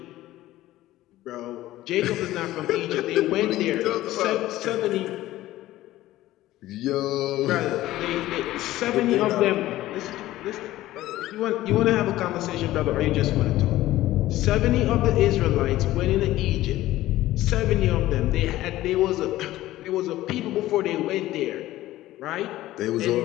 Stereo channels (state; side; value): quieter; right; 15.6 dB